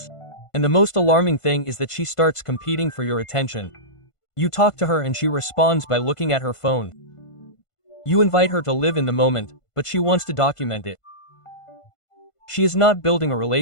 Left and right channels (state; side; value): late; right; 1.5 ms